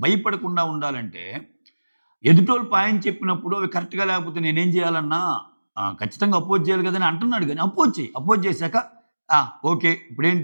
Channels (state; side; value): inverted; both; correlation -1.00